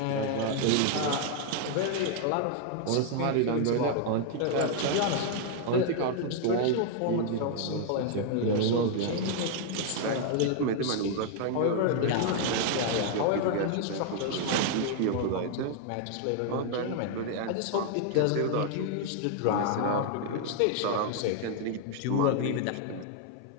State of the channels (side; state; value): both; different; correlation 0.00